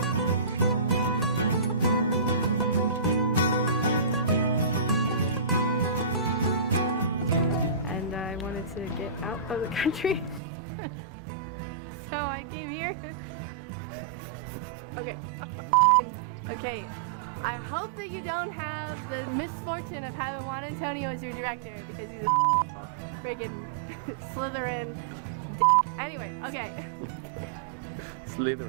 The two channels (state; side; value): drops out; left; at 10.4 s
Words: To get out of the country, so I came here. Okay, I hope that you don't have the misfortune of having Juan Antonio as your director, because he's a friggin' Slytherin dick. Anyway, okay.